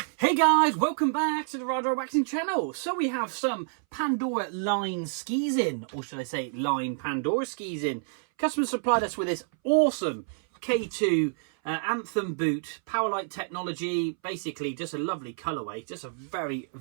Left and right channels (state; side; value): silent; left; 59 dB below the other